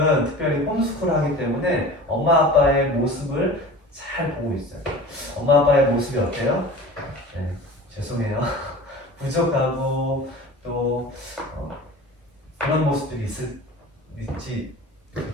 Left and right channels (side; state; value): both; normal; correlation 0.38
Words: 특별히 홈스쿨 하기 때문에 엄마 아빠의 모습을 잘 보고 있어요. 엄마 아빠의 모습이 어때요? 네, 죄송해요. 부족하고 또 그런 모습들이 있지,